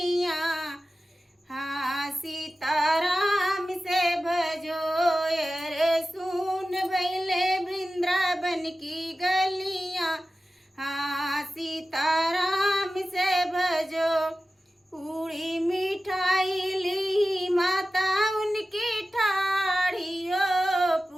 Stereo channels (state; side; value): normal; both; correlation 0.94